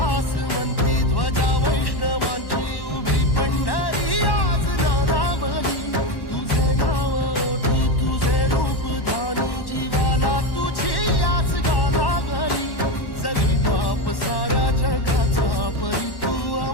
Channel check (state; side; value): late; right; 1.1 ms